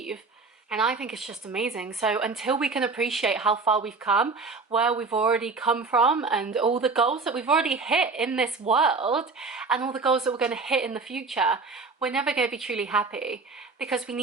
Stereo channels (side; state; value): left; quieter; 4.3 dB